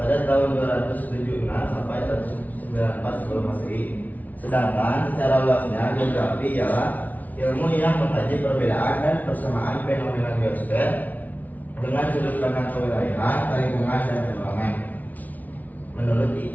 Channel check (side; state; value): right; late; 0.076 ms